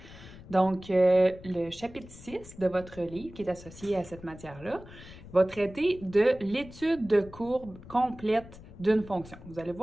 Donc, le chapitre 6 de votre livre qui est associé à cette matière-là va traiter de l'étude de courbe complète d'une fonction. Vous allez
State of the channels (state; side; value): noise; left; rumble, 18 dB below the sound